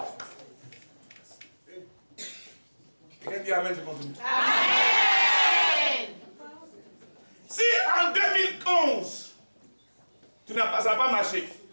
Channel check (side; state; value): both; inverted; correlation -1.00